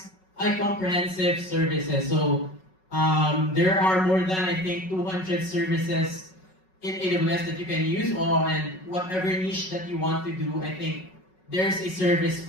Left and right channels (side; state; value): right; late; 5.4 ms